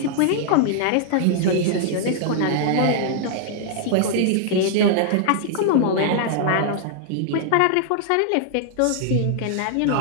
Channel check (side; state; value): both; different; correlation -0.01